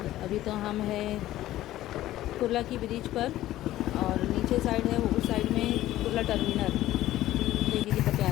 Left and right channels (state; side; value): quieter; right; 14.6 dB